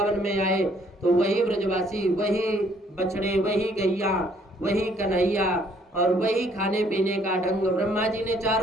में आए तो वही ब्रजवासी, वही बछड़े, वही गैया, वही कन्हैया और वही खाने पीने का ढंग। ब्रह्मा जी ने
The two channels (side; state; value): both; normal; correlation 0.64